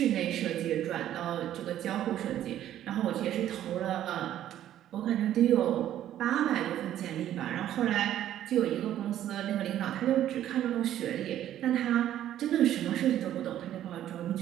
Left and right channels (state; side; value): quieter; left; 11.8 dB